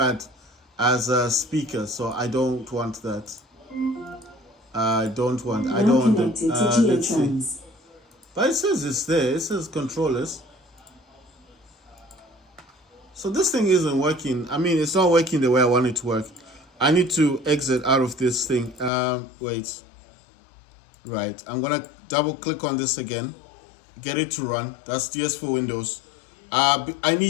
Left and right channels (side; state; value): right; drops out; at 18.9 s